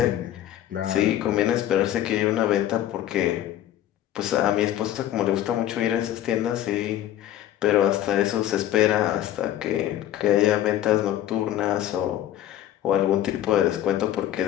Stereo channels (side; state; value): right; quieter; 12.3 dB